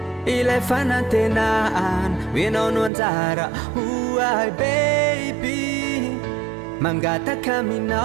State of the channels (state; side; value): drops out; left; at 2.9 s